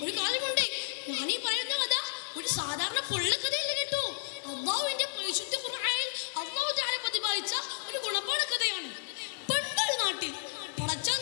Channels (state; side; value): silent; right; 56 dB below the other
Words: ഒരു കാര്യമുണ്ട്, ഞാൻ ഈ പറയുന്ന കഥ ഒരു സാധാരണ പൊള്ളക്കഥയല്ല കേട്ടോ. അല്ലാഹുവിന്റെ പരിശുദ്ധ ഖുർആനിൽ അല്ലാഹു തആല പ്രതിപാദിച്ച ഒരു ഗുണപാഠ കഥയാണ്. പണ്ടൊരു നാട്ടിൽ